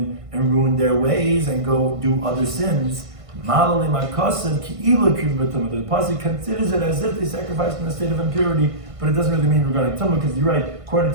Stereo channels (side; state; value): left; late; 1.5 ms